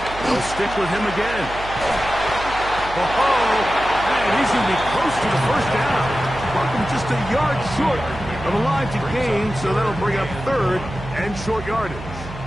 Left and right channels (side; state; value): right; noise; hum, 12 dB below the sound